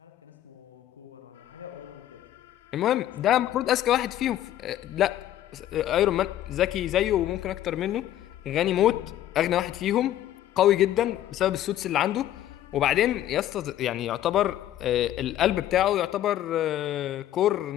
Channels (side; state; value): right; quieter; 12.5 dB